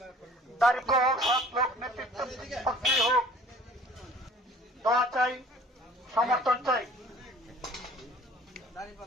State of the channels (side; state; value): both; normal; correlation 0.50